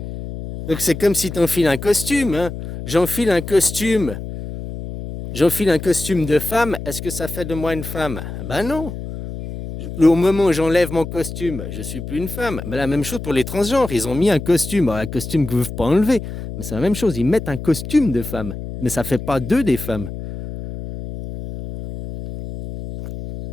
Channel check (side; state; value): left; noise; hum, 9 dB below the sound